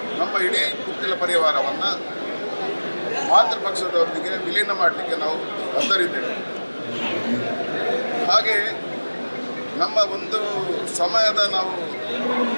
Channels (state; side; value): inverted; both; correlation -1.00